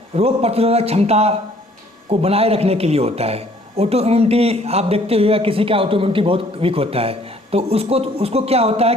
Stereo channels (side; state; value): both; normal; correlation 0.59